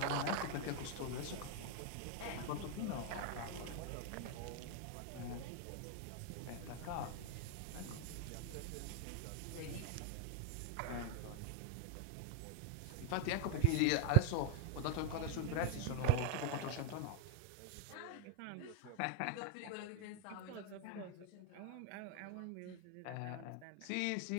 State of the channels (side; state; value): both; different; correlation -0.01